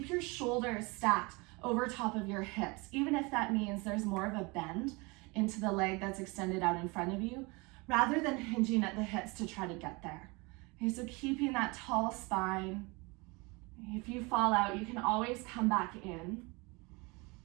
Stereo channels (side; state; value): left; quieter; 26.7 dB